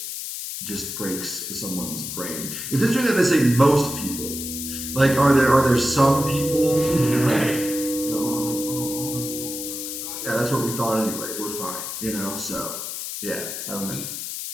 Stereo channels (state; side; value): noise; left; hiss, 6 dB below the sound